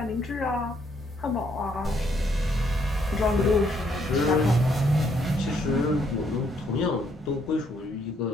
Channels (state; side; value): normal; both; correlation 0.71